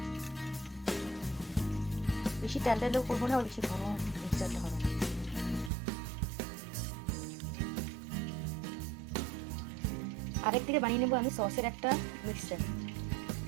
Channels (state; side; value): drops out; left; at 5.7 s